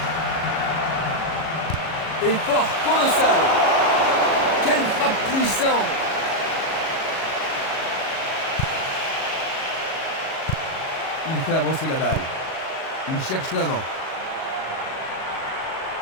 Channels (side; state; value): right; late; 37 ms